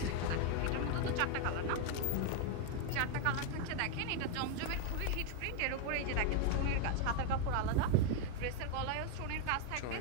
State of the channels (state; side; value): different; both; correlation 0.01